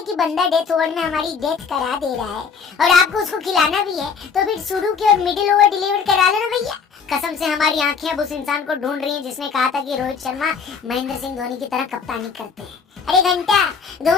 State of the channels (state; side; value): quieter; right; 5.8 dB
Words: कि बंदा डेथ ओवर में हमारी डेथ करा दे रहा है और आपको उसको खिलाना भी है, तो फिर शुरू के और मिडिल ओवर डिलीवर करा लो ना भैया। कसम से हमारी आंखें अब उस इंसान को ढूंढ रही हैं जिसने कहा था कि रोहित शर्मा महेंद्र सिंह धोनी की तरह कप्तानी करते हैं। अरे घंटा,